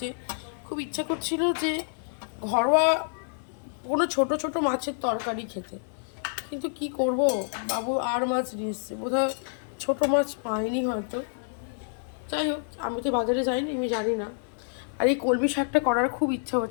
খুব ইচ্ছা করছিল যে ঘরোয়া কোনো ছোট ছোট মাছের তরকারি খেতে, কিন্তু কি করব, বাবু আর মাছ নিয়ে এসছে, বোধহয় ছোটো মাছ পাইনি হয়তো। যাই হোক, আমি তো বাজারে যাইনি, আমি জানি না। আর এই কলমি শাকটা করার খুব ইচ্ছা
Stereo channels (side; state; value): right; silent; 59 dB below the other